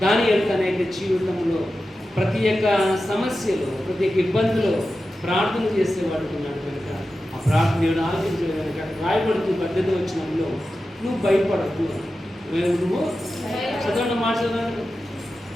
దానియేలు తన యొక్క జీవితంలో ప్రతి ఒక్క సమస్యలో, ప్రతి ఒక్క ఇబ్బందిలో ప్రార్థన చేసేవాడు ఉన్నాడు కనుక ఆ ప్రార్థన దేవుడు ఆలోచించే కనుక రాయబడుతూ 18వ వచనంలో నువ్వు భయపడకు. నువ్వు చదవండి, మాట చదవండి.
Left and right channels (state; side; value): normal; both; correlation 0.93